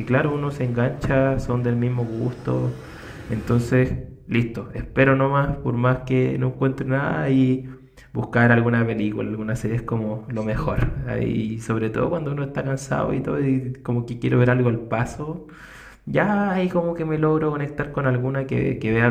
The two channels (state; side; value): identical; both; correlation 1.00